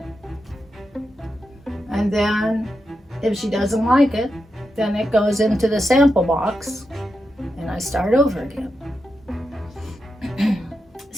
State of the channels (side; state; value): both; normal; correlation 0.87